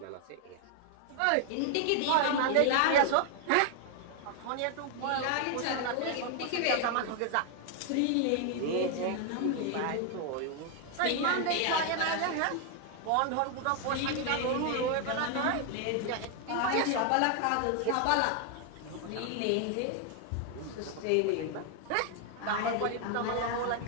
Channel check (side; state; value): both; different; correlation 0.00